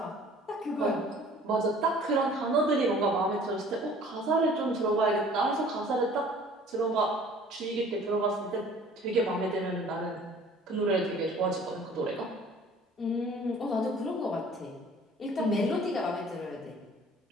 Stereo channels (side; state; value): both; normal; correlation 0.51